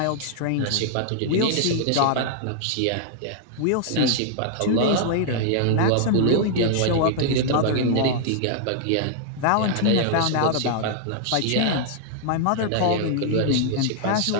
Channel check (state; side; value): different; both; correlation -0.01